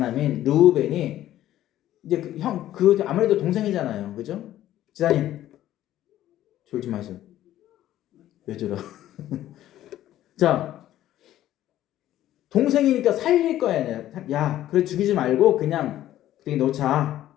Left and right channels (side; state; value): right; quieter; 13.2 dB